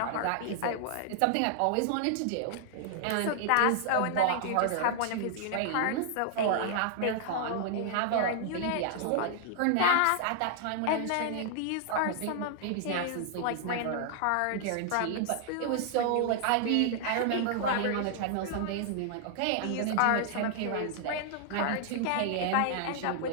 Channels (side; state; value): both; different; correlation -0.01